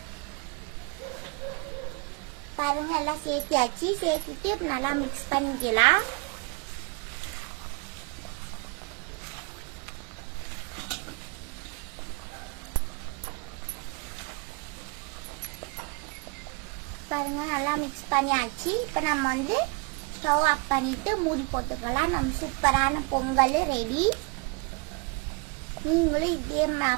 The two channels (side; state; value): left; quieter; 29.5 dB